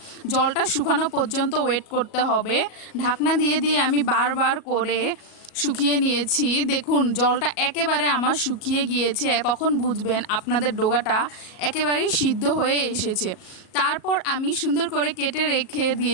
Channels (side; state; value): right; late; 37 ms